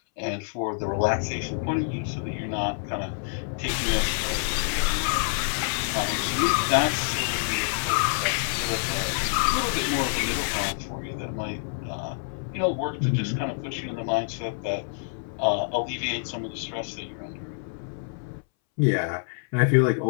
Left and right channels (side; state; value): right; silent; 60 dB below the other